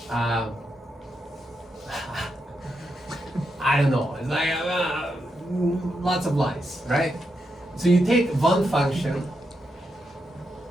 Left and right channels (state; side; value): normal; both; correlation 0.84